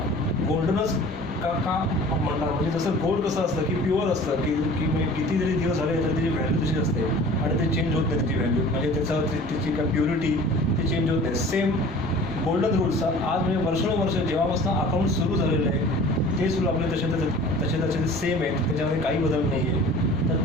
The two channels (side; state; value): both; normal; correlation 0.44